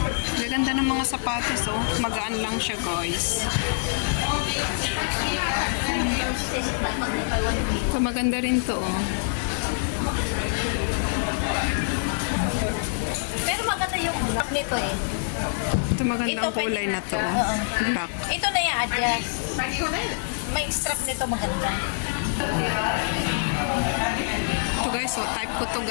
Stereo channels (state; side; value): silent; right; digital silence